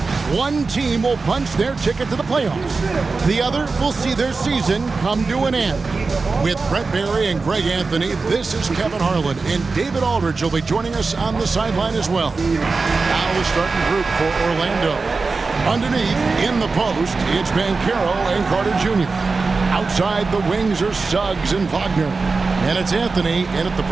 One team will punch their ticket to the playoffs. The other will see their season come to an end. With Brett Barry and Greg Anthony, this is Kevin Harlan, and David Aldridge will be joining us on the sideline as well. Now the starting group for Orlando. Underneath, in the post, it's Banchero and Carter Jr. Outside the wings are Suggs and Wagner. And it's Anthony in at the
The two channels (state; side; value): quieter; left; 4.1 dB